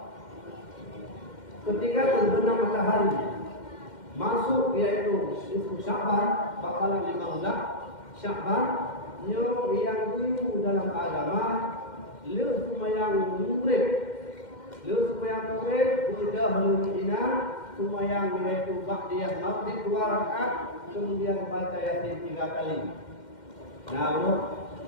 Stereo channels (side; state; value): right; late; 2.1 ms